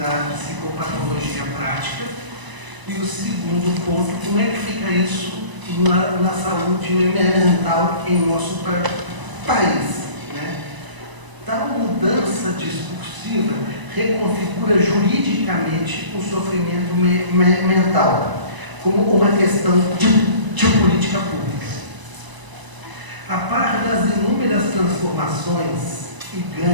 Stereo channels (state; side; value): late; left; 1.0 ms